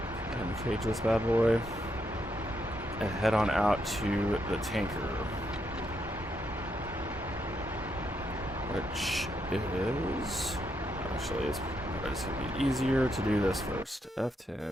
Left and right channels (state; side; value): normal; both; correlation 0.79